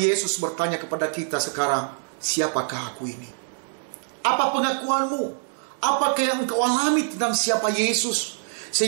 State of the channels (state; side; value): silent; left; digital silence